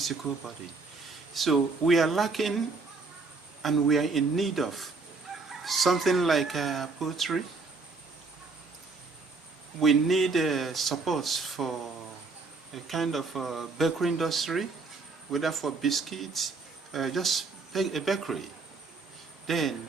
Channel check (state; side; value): quieter; left; 4.0 dB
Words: body. So we are lacking, and we are in need of something like poultry. We need support for a kind of bakery industry, whether for biscuits, just a bakery. Then